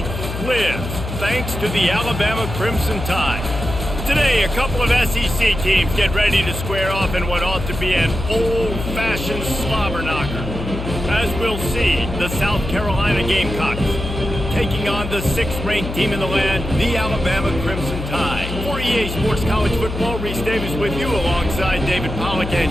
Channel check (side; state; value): left; noise; hum, 6 dB below the sound